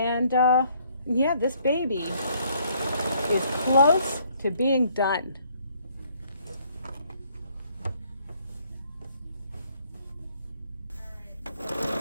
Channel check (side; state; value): both; inverted; correlation -0.65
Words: yeah, this baby is close to being done.